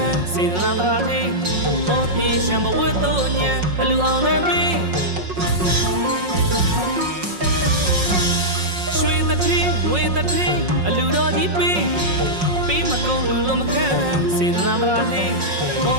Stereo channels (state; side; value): late; left; 5.5 ms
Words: စေတနာတရားသေးပေါ်ပြေရှံဘဝတ်တို့ညံအလူအောင်လည်းပေးရွှေတထင်းငွေတထင်းအလူတော်ကြီးပေးမကုန်လူလုံးမခံစေတနာတရားသေးပေါ